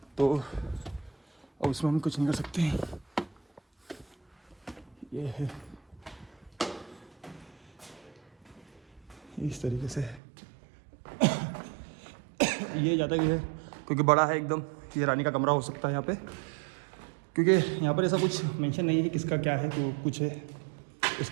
तो अब उसमें हम कुछ नहीं कर सकते हैं। ये है इस तरीके से। ये ज़्यादा ही है क्योंकि बड़ा है एकदम। ये रानी का कमरा हो सकता है यहाँ पे, क्योंकि यहाँ पर ऐसा कुछ मेंशन नहीं है कि किसका क्या है, तो कुछ है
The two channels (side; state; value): left; drops out; at 10.2 s